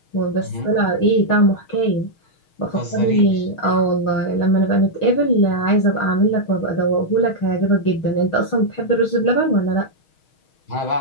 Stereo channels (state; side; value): late; right; 6.4 ms